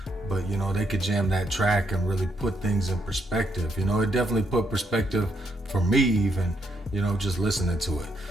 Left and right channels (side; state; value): both; normal; correlation 0.76